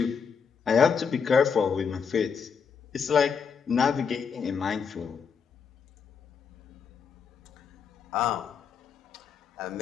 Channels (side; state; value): right; quieter; 6.3 dB